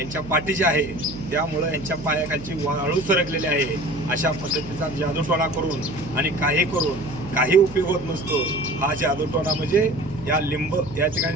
पाठीचे आहे, त्यामुळं यांच्या पायाखालची वाळू सरकलेली आहे। अशा पद्धतीचा जादूटोणा करून आणि काही करून काही उपयोग होत नसतो। हा जादूटोणा म्हणजे या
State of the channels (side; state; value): right; noise; hum, 14 dB below the sound